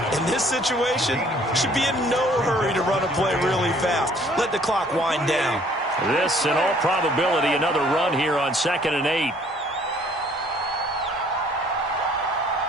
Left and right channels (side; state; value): both; normal; correlation 0.59